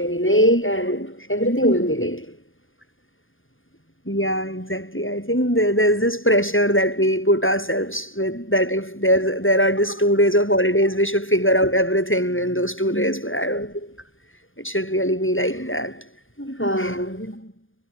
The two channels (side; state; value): right; late; 0.58 ms